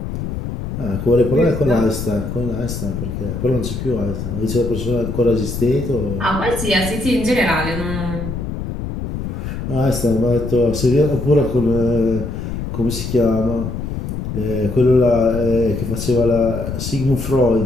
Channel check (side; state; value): left; noise; rumble, 5 dB below the sound